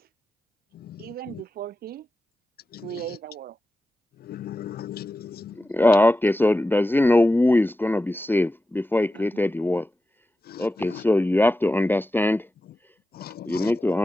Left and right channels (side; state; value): both; normal; correlation 0.93